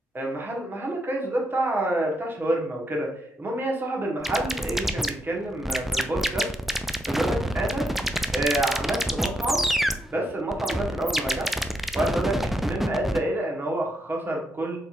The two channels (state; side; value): normal; both; correlation 0.80